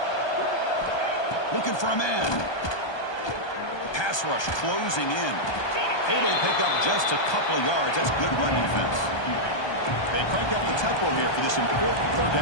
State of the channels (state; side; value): late; right; 1.2 ms